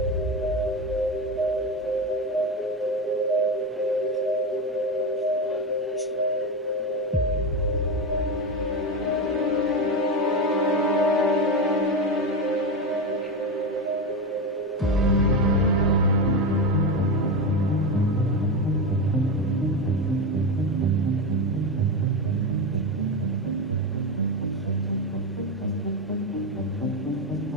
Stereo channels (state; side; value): normal; both; correlation 0.16